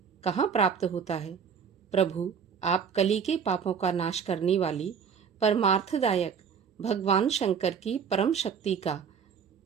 कहाँ प्राप्त होता है? प्रभु, आप कली के पापों का नाश करने वाली परमार्थदायक भगवान शंकर की परम शक्ति का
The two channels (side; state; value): left; quieter; 6.8 dB